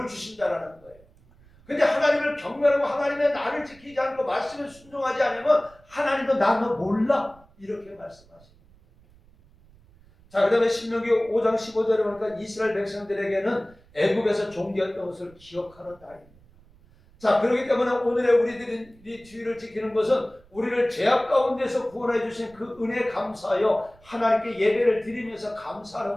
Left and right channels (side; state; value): right; noise; rumble, 27 dB below the sound